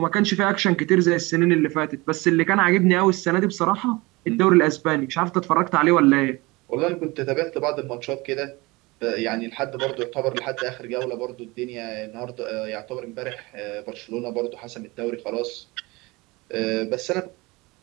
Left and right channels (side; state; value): left; quieter; 23.3 dB